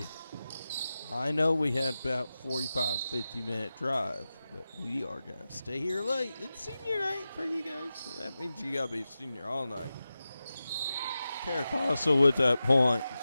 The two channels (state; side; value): inverted; both; correlation -0.93